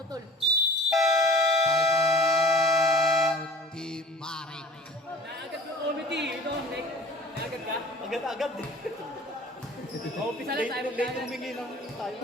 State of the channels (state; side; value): normal; both; correlation 0.45